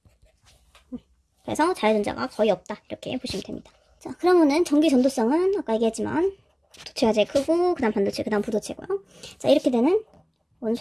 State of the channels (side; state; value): both; identical; correlation 1.00